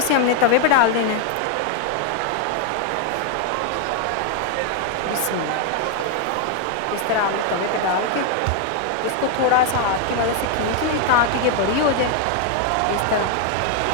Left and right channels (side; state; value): both; different; correlation 0.00